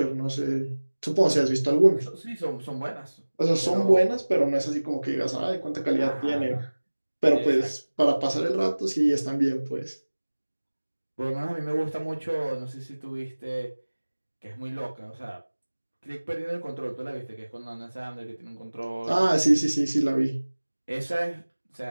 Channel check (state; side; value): inverted; both; correlation -1.00